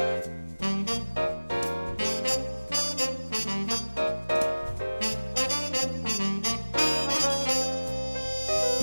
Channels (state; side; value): inverted; both; correlation -1.00